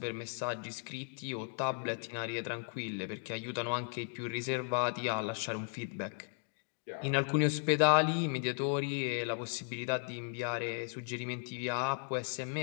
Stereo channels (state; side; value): silent; right; 54 dB below the other